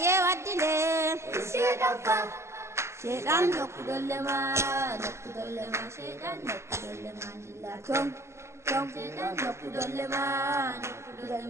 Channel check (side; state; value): left; late; 0.13 ms